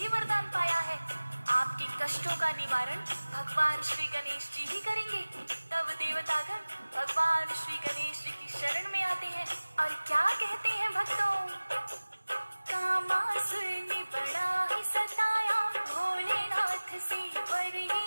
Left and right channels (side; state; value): both; inverted; correlation -1.00